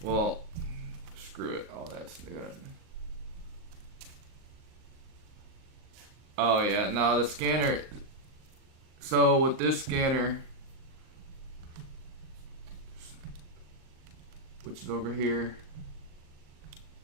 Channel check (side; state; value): left; late; 38 ms